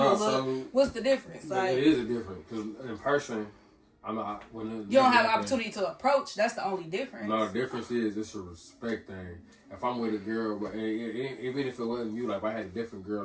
So, what's the difference? Like, it is a difference because in person, I'm not. You don't have an opportunity to approach. That's the only difference. No, the difference is it's a respect thing. If I'm with a girl, but even if it wasn't you, like if I had a different girl,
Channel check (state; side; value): identical; both; correlation 1.00